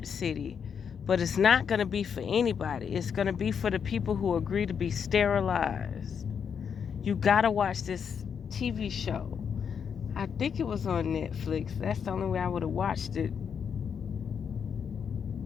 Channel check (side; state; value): right; quieter; 7.1 dB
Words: city, but it's not going to be for anybody. It's going to be for the people who agree to be sterilized. You got to watch this TV show. I think it was on Netflix. That's the only way I would have watched it